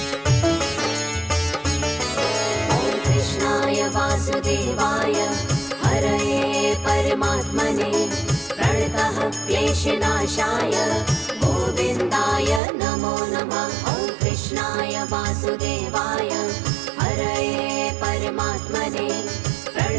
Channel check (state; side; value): drops out; left; at 12.6 s